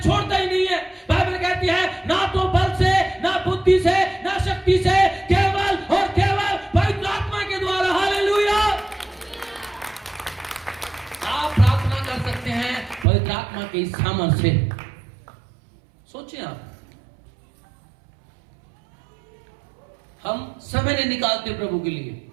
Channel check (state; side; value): drops out; left; at 13.1 s